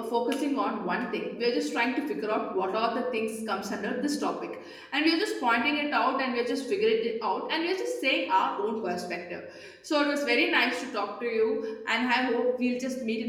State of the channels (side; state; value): both; identical; correlation 1.00